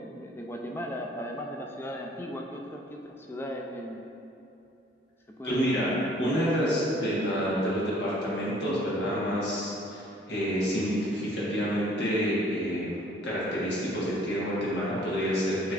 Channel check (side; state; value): both; normal; correlation 0.57